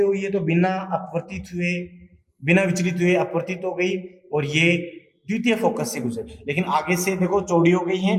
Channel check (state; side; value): identical; both; correlation 1.00